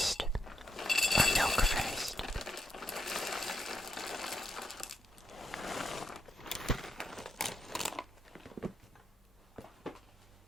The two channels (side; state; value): both; normal; correlation 0.80